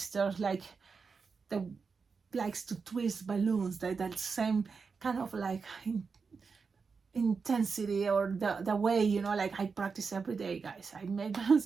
like that likes to twist balloons, that same kind of like intensity or the way, you know, like I practice every day, guys. I make balloons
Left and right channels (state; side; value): quieter; left; 5.1 dB